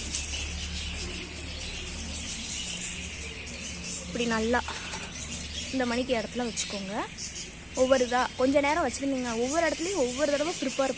இப்படி நல்லா இந்த மணிக்கு இடத்துல வச்சுக்கோங்க. கொஞ்சம் நேரம் வச்சுருந்தீங்க. ஒவ்வொரு இடத்துலையும் ஒவ்வொரு தடவை ப்ரிப்பேர்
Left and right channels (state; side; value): identical; both; correlation 1.00